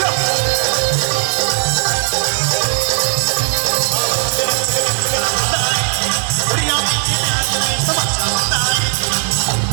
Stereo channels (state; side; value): silent; left; 62 dB below the other